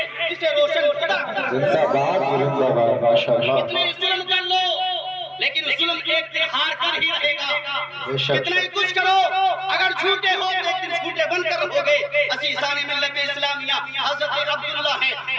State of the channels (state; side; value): identical; both; correlation 1.00